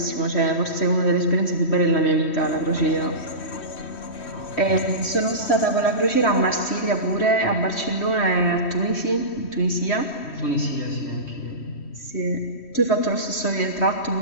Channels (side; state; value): right; late; 3.1 ms